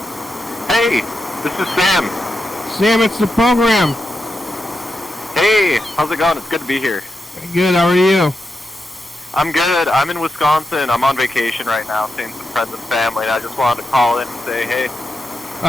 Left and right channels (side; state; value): both; normal; correlation 0.87